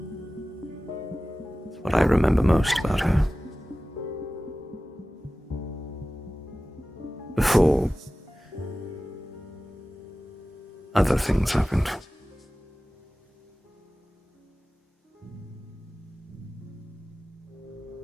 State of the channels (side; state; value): both; normal; correlation 0.96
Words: It's what I remember most about her. Before other things happened.